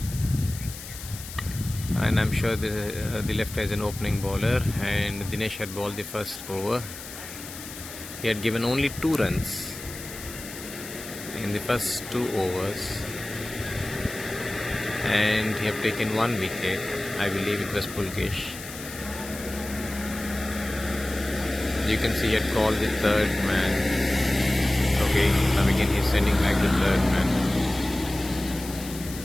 And I'm sure the left is an opening bowler, and Dinesh had bowled the first over. He had given only 2 runs in the first 2 overs, and he had taken 1 wicket. I believe it was Pulkesh. You can see he had called the 3rd man. Okay, now again he's sending back the 3rd man.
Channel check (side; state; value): left; noise; hiss, 12 dB below the sound